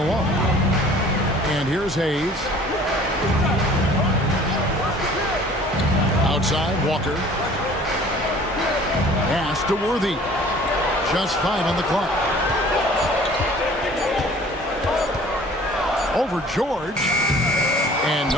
And here's Hayes. Outside, Walker. Pass to Worthy. Just 5 on the clock. Over George. And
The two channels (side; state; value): both; normal; correlation 0.50